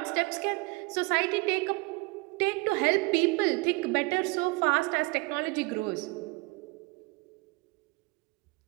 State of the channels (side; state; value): left; quieter; 26.6 dB